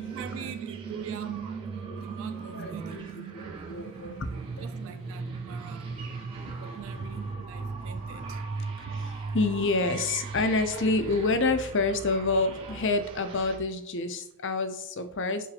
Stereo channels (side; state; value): both; normal; correlation 0.09